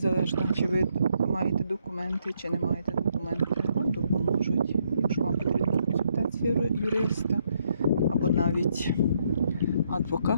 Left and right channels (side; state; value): both; inverted; correlation -0.74